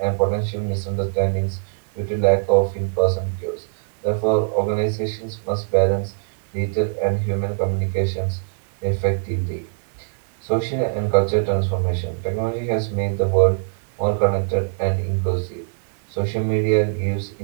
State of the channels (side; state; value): left; silent; digital silence